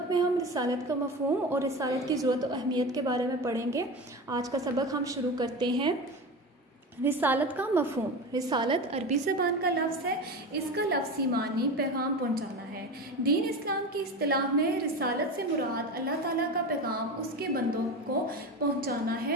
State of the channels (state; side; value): normal; both; correlation 0.26